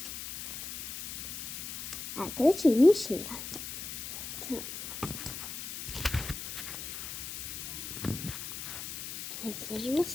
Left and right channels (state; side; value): noise; left; hiss, 7 dB below the sound